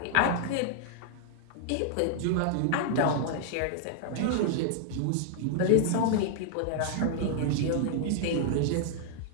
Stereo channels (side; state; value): both; different; correlation -0.01